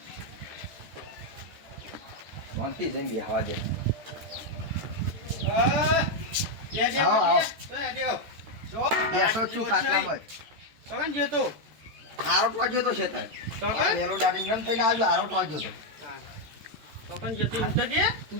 શાંતિ જઈને બેહવા દે. બેસો છું ખાટલામાં જ. હારો ટોજ્યો તો છે તાર. પેલો દાડી નમ થઈને આવજો હારો ટોજ્યો તો. તું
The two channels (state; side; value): late; left; 14 ms